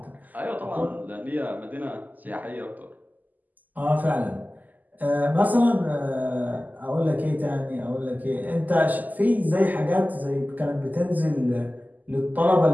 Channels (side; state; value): left; late; 0.082 ms